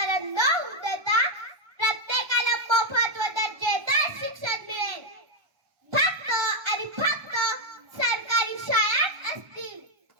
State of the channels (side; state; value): left; late; 1.3 ms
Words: न होऊ देता प्रत्येकाला मोफत व दर्जेदार शिक्षण मिळेल. फक्त आणि फक्त सरकारी शाळा असतील.